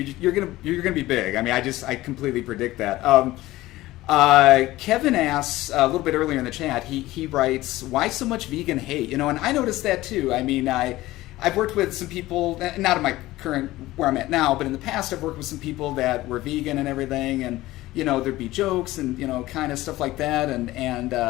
you're gonna be big. I mean, I completely predict that. Kevin asks a little bit earlier in the chat. He writes, "Why so much vegan hate?" You know, and I noticed that too. I mean, I've worked with some people, not in my current where I'm at now, but in the past I've worked with some people that were vegan and everything, and you know, there'd be jokes and you know, kind of stuff like that, and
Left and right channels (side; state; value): right; quieter; 17.3 dB